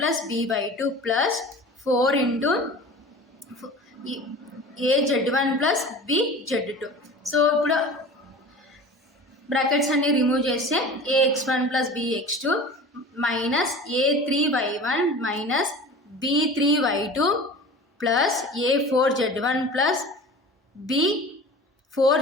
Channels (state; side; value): normal; both; correlation 0.38